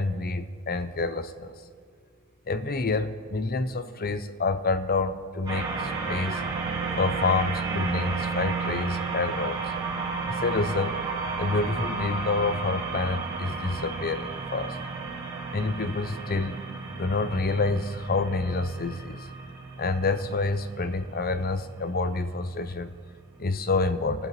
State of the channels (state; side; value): normal; both; correlation 0.23